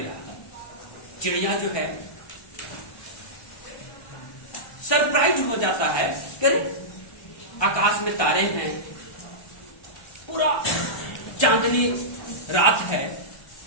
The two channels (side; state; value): right; late; 1.2 ms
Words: चिड़िया जो है सरप्राइज हो जाता है कि आकाश में तारे हैं, पूरा चांदनी रात है,